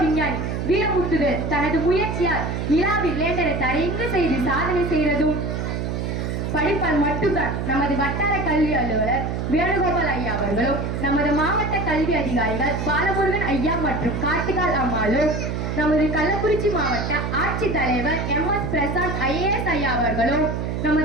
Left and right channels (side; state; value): right; noise; hum, 2 dB below the sound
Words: விஞ்ஞானி வீரமுத்துவேல் தனது முயற்சியால் நிலாவில் லேண்டரை தரையங்கு செய்து சாதனை செய்ததும் படிப்பால் மட்டும்தான். நமது வட்டார கல்வி அலுவலர் வேணுகோபால் ஐயா அவர்களும், நமது மாவட்ட கல்வி அதிகாரிகள் பாலமுருகன் ஐயா மற்றும் கார்த்திகால் அம்மாளும், நமது கள்ளக்குறிச்சி மாவட்ட ஆட்சித்தலைவர் MS பிரசாந்த் IAS ஐயா அவர்களும்,